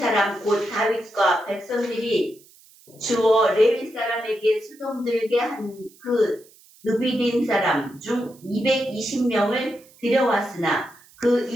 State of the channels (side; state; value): right; noise; hiss, 27 dB below the sound